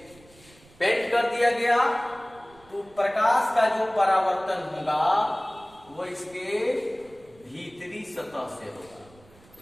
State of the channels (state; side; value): noise; right; rumble, 26 dB below the sound